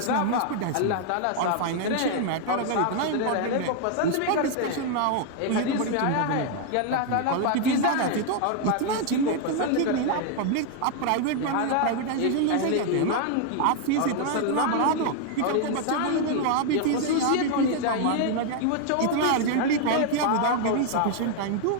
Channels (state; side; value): different; both; correlation 0.00